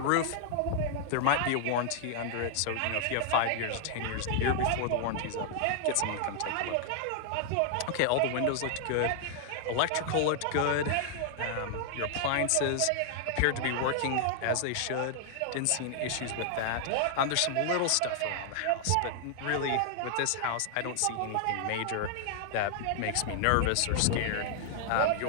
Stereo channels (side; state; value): both; different; correlation 0.00